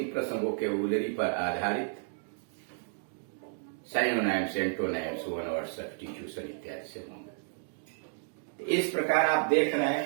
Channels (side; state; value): left; silent; digital silence